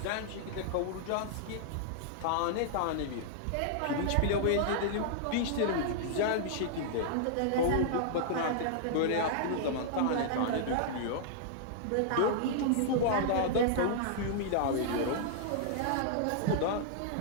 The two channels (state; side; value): different; both; correlation -0.01